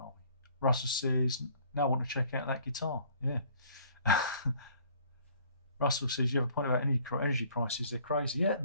Russell says, now I want to check out that guitar. Yeah. Russell says, you have a point about energy prices, they're crazy. Yeah,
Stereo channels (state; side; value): inverted; both; correlation -0.56